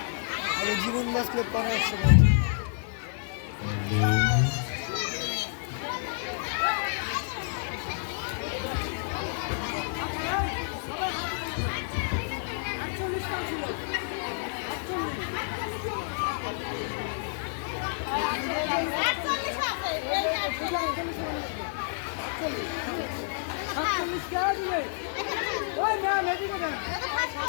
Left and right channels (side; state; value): right; silent; 58 dB below the other